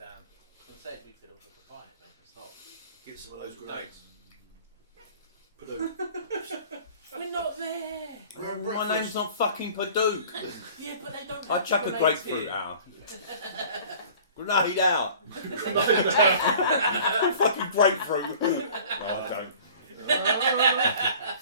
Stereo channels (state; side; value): inverted; both; correlation -0.47